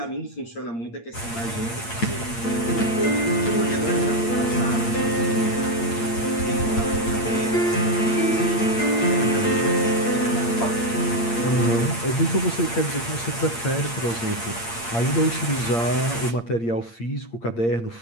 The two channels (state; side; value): late; right; 8.7 ms